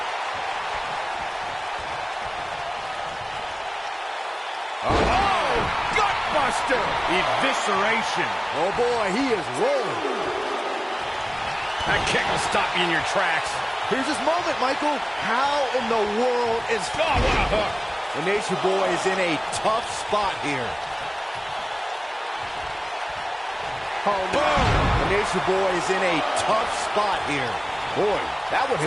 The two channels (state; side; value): identical; both; correlation 1.00